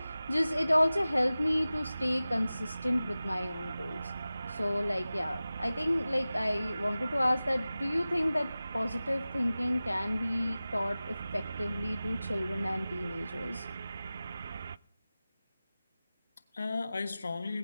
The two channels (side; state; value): both; inverted; correlation -0.96